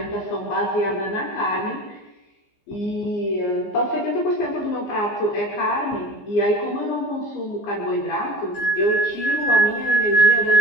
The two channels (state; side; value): late; right; 15 ms